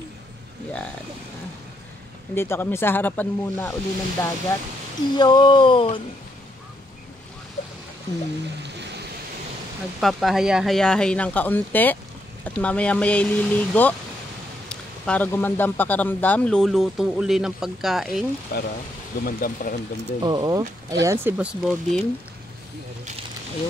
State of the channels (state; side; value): normal; both; correlation 0.76